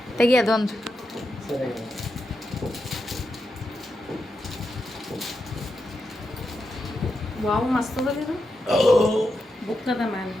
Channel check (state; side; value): normal; both; correlation 0.86